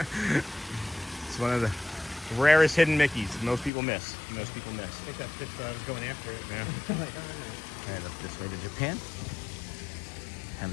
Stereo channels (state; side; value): drops out; right; at 3.7 s